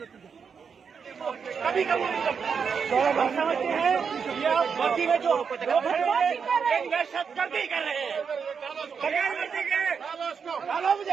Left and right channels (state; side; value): quieter; left; 6.2 dB